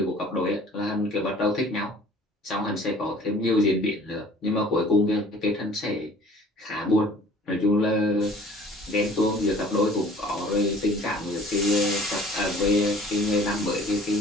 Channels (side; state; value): both; normal; correlation 0.51